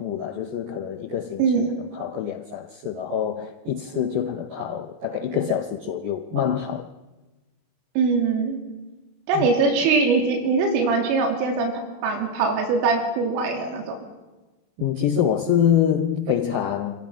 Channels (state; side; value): late; left; 25 ms